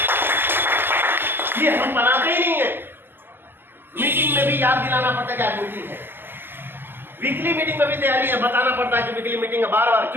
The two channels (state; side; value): late; left; 0.097 ms